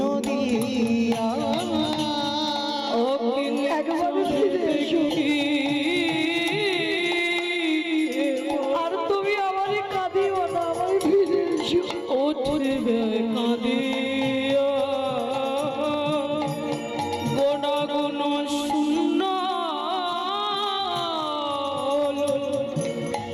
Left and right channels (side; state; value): both; identical; correlation 1.00